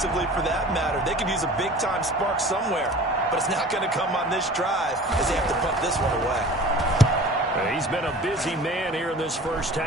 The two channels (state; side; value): normal; both; correlation 0.43